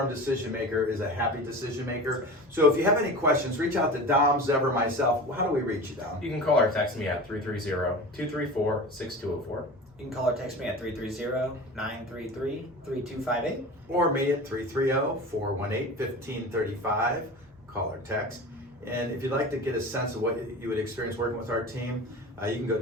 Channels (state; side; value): normal; both; correlation 0.34